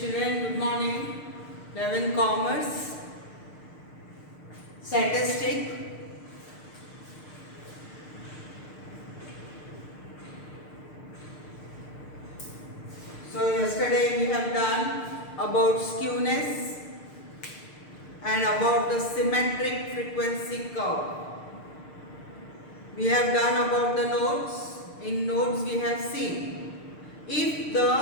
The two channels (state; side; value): late; right; 6.6 ms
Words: good morning. 11 Commerce, Statistic. So yesterday we have done about skewness and about the symmetric frequency curve. We have done about the nodes. In nodes we have seen if